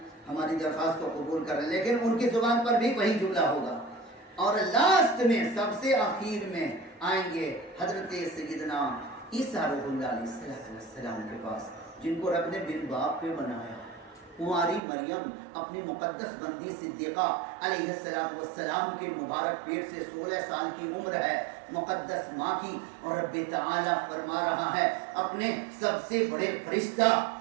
ہماری درخواست کو قبول کر رہے ہیں، لیکن ان کی زبان پر بھی وہی جملہ ہوگا۔ اور لاسٹ میں، سب سے آخر میں آئیں گے حضرت سیدنا عیسیٰ روح اللہ علیہ السلام کے پاس، جن کو رب نے بن باپ پہ بنایا۔ کنواری مریم اپنی مقدس بندی صدیقہ علیہ السلام کے مبارک پیٹ سے 16 سال کی عمر ہے، مقدس ماں کی، اور رب تعالیٰ فرما رہا ہے اپنے سب سے بڑے فرشتہ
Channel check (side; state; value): left; drops out; at 14.8 s